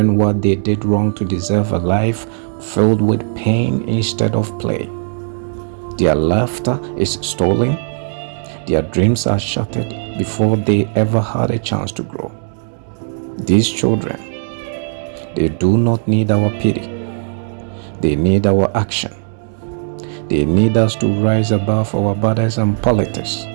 what they did wrong to deserve a life filled with pain instead of play. Their laughter is stolen. Their dreams are shattered before they ever had a chance to grow. These children, they do not need our pity. They need our action. They need us to rise above our borders and politics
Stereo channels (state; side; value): silent; left; digital silence